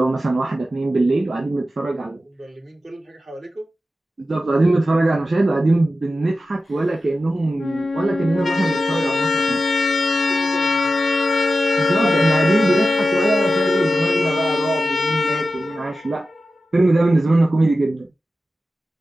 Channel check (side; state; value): both; normal; correlation 0.93